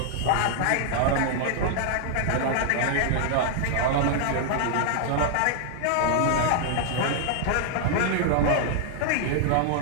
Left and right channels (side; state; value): both; different; correlation -0.01